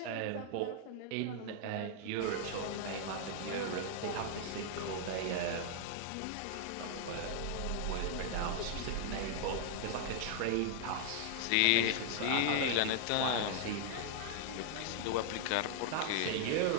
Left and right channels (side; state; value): both; different; correlation -0.01